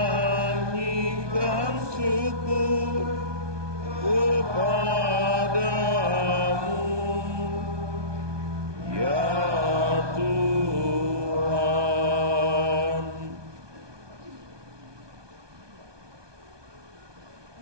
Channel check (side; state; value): left; late; 1.2 ms